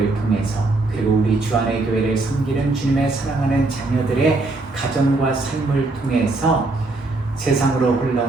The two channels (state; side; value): quieter; left; 3.2 dB